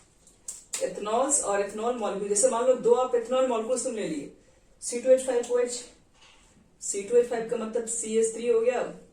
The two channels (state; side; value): identical; both; correlation 1.00